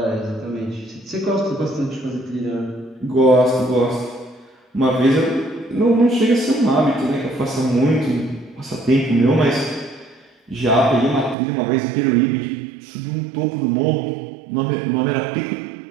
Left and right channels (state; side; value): drops out; left; at 11.4 s